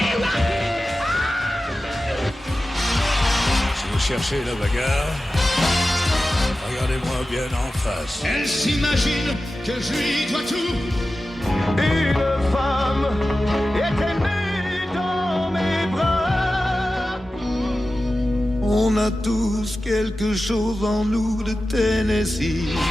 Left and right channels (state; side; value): normal; both; correlation 0.94